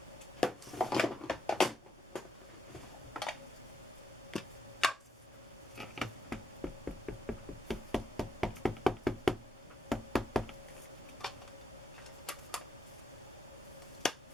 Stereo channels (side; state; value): both; normal; correlation 0.81